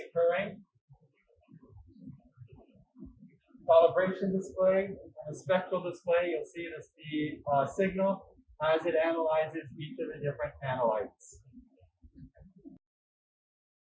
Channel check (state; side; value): identical; both; correlation 1.00